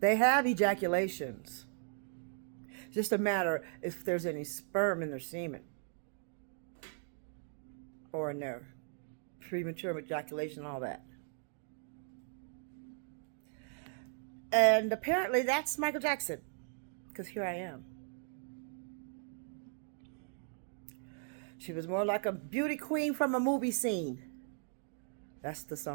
have ejaculations. It's just a matter if there's any sperm in their semen or in their premature ejaculation, all that. And apparently that's Michael Jackson, because here I am. She was more like a beauty queen from a movie scene. That's the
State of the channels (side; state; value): left; silent; 53 dB below the other